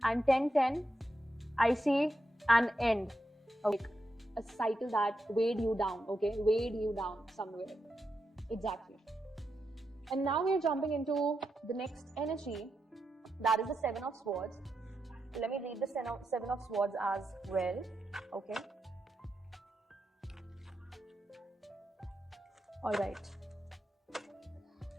And 10, I see an end, okay. A cycle that weighed you down, okay, weighed you down somewhere. Exactly. And now we are jumping into the next energy, that is the 7 of Swords. Let me read the 7 of Swords as well, okay. All right.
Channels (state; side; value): normal; both; correlation 0.86